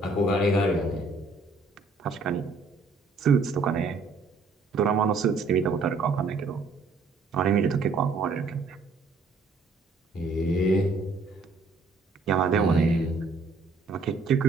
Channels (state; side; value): quieter; left; 3.7 dB